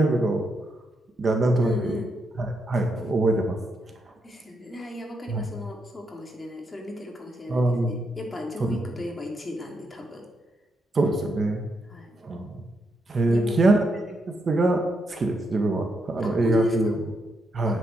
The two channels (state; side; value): normal; both; correlation 0.81